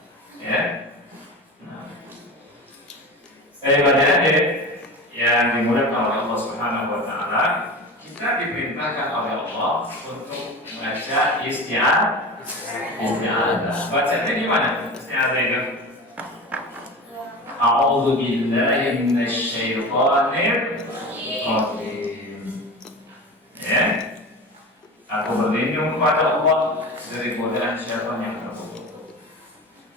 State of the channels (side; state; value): both; normal; correlation 0.30